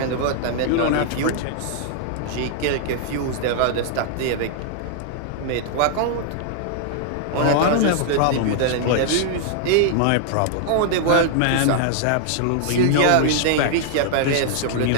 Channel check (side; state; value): both; different; correlation -0.01